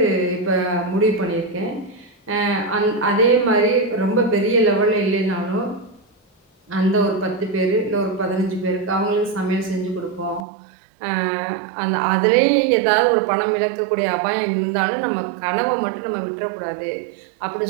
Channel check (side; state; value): left; drops out; at 10.4 s